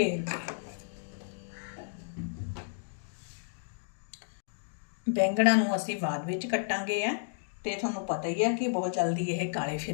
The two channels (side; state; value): right; silent; digital silence